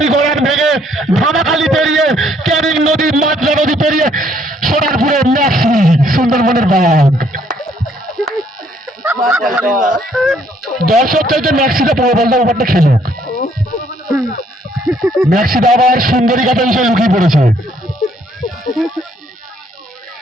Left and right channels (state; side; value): normal; both; correlation 0.66